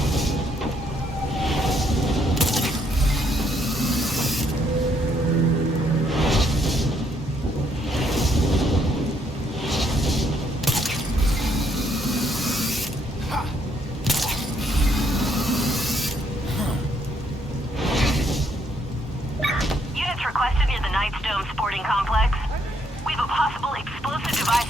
Units requested near the Knight's Dome sporting complex. We have a possible explosive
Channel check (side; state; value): both; normal; correlation 0.72